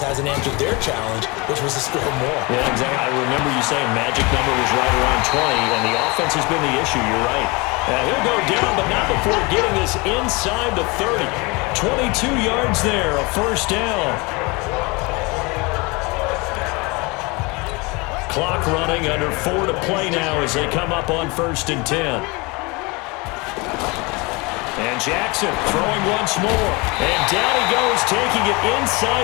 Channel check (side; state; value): right; quieter; 26.6 dB